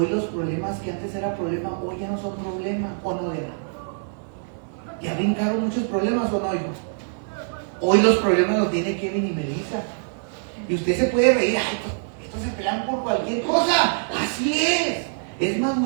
los problemas que antes era problema, hoy ya no son problema, ¿o no era? Ya brincaron muchos problemas, ¿o no, hijo? Hoy los problemas los tiene Kevin y Melissa. Y usted se puede reír, ay, estos se pelean por cualquier cosa. Así es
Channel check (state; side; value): silent; left; digital silence